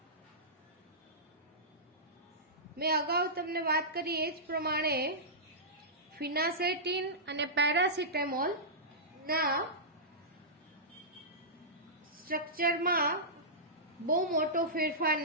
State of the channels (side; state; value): both; normal; correlation -0.16